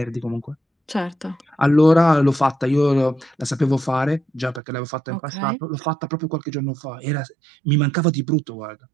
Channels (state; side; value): drops out; left; at 4.6 s